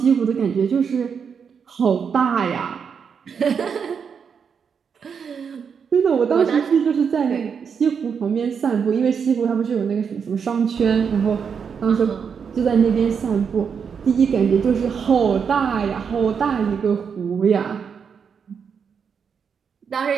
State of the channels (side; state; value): left; quieter; 6.6 dB